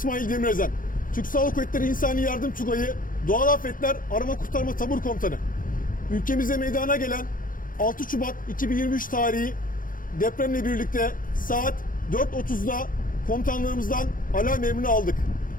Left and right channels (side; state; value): right; late; 0.40 ms